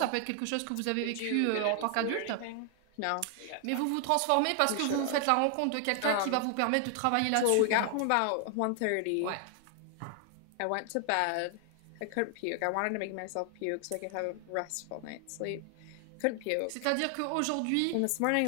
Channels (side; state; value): both; different; correlation 0.00